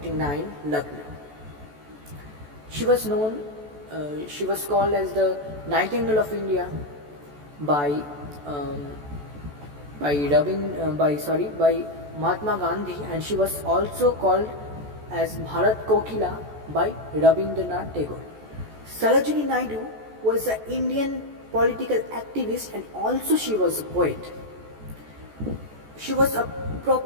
Lucknow. She was called as the Nightingale of India by Mahatma Gandhi, and she was also called as Bharat Kokila by Rabindranath Tagore. Sarojini Naidu was an Indian political activist and also she was a poet. She was a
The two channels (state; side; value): late; left; 14 ms